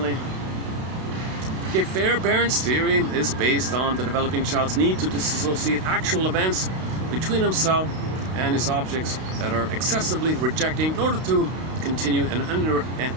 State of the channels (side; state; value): left; late; 32 ms